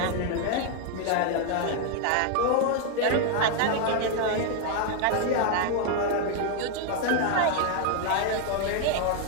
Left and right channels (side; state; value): both; different; correlation 0.01